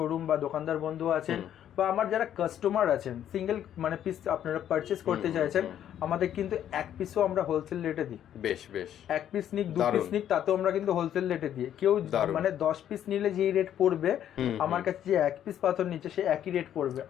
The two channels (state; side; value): quieter; right; 10.5 dB